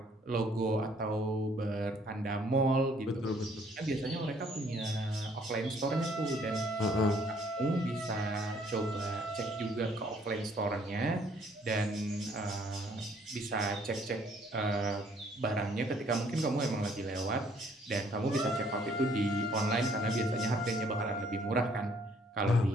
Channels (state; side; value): normal; both; correlation 0.63